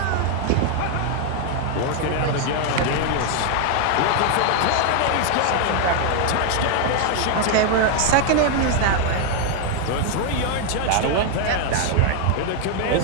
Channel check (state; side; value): different; both; correlation 0.00